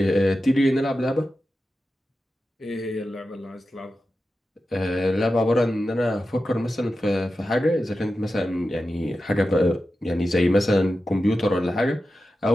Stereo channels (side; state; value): both; normal; correlation 0.92